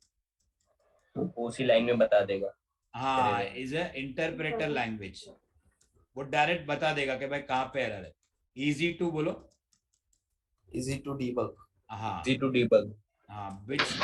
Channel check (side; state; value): both; identical; correlation 1.00